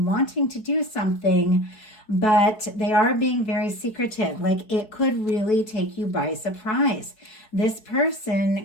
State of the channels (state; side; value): late; right; 4.6 ms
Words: wanting to do something, but they are being very secretive. Like it could really take you by surprise. This